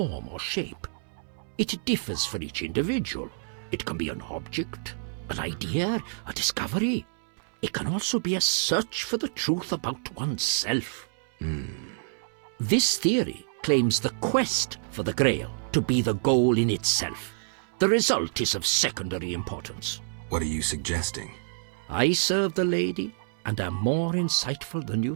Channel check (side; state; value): left; silent; digital silence